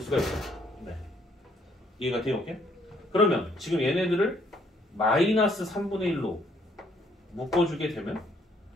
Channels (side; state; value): both; normal; correlation 0.67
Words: 수가 있어요. 네. 이해가 돼요? 오케이? 그러면 지금 얘네들을 마이너스 3분의 1로 묶어주게 되면